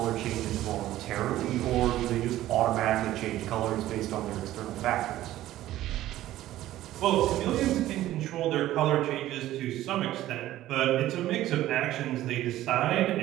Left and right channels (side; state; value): left; quieter; 14.4 dB